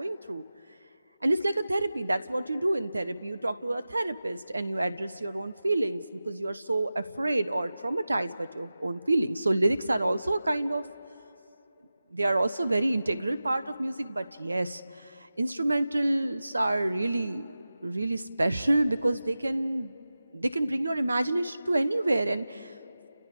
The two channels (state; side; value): inverted; both; correlation -0.95